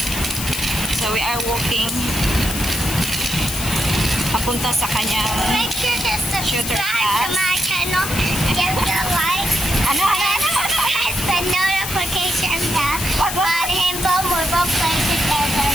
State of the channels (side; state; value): left; noise; hiss, 6 dB below the sound